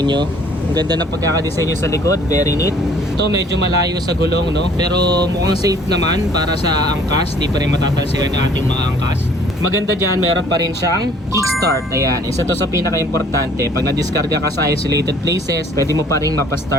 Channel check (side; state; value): both; normal; correlation 0.56